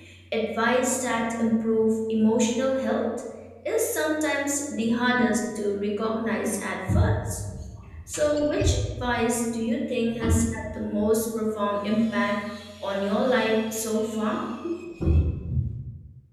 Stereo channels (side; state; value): both; identical; correlation 1.00